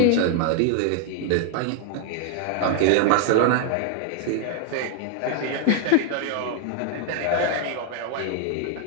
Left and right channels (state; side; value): different; both; correlation 0.00